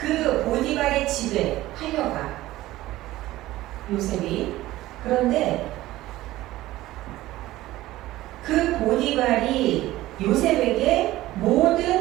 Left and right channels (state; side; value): quieter; left; 16.4 dB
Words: 보디발의 집에 팔려가 요셉이. 그런데 그 보디발이 요셉에게